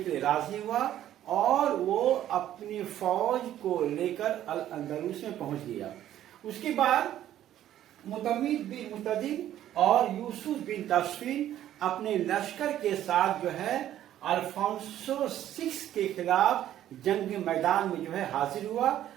लिए राजी हुआ और वो अपनी फौज को लेकर अल अंदलुस में पहुंच गया। उसके बाद मुतमिद बिन मुतदिद और यूसुफ बिन ताशफीन अपने लश्कर के साथ जो है अल्फोंसो VI के खिलाफ जंग मैदान में जो है हाजिर हुआ।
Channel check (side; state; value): left; quieter; 12.1 dB